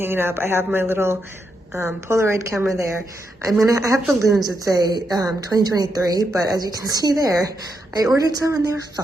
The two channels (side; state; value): both; normal; correlation 0.82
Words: up. I have my little Polaroid camera there. I have balloons that say 2023, but as you can see there, I ordered some and they were